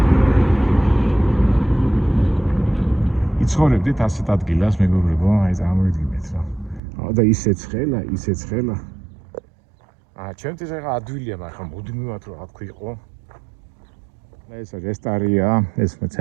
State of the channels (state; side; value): drops out; left; at 6.8 s